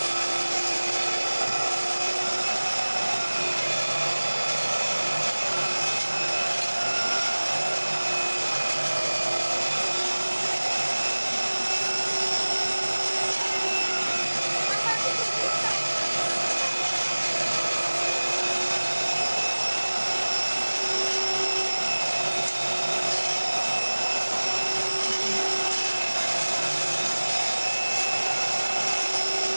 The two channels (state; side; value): inverted; both; correlation -1.00